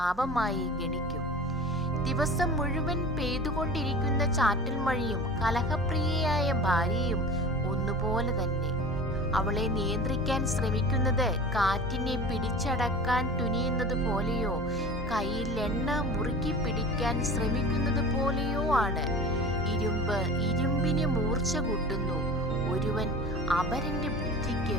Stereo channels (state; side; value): normal; both; correlation 0.36